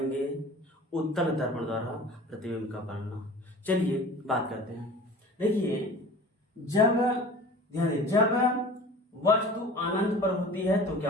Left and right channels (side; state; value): both; normal; correlation 0.41